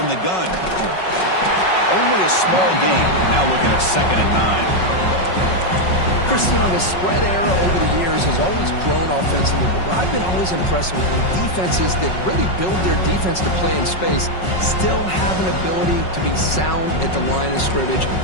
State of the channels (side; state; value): right; late; 5.4 ms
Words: the gun. Only a small gain. Now looking at 2nd and 9. Chris, you know, the spread era over the years has always grown offensively, but what I've been always impressed with defenses that really build their defense to play in space still have an ability to be sound at the line of scrimmage